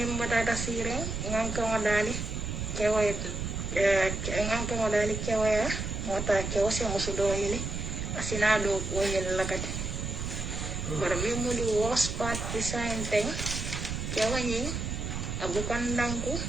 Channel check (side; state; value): right; noise; rumble, 4 dB below the sound